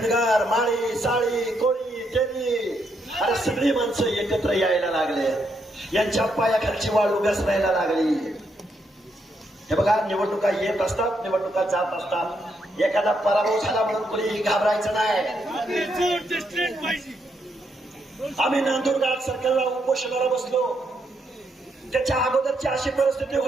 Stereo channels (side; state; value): both; normal; correlation 0.78